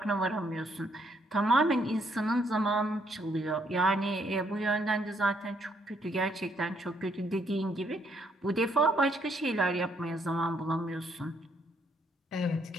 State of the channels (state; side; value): normal; both; correlation 0.71